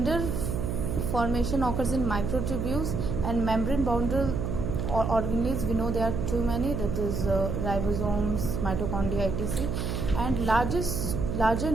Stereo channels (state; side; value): noise; right; hum, 2 dB below the sound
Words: formation occurs in microtubules and membrane boundary organelles, we know there are too many, that is ribosomes, mitochondria, etc. And larger